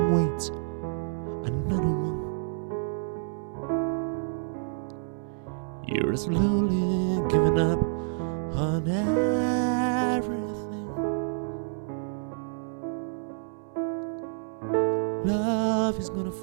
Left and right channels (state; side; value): silent; left; digital silence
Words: wait another one. You're slowly giving up on everything. Love is gonna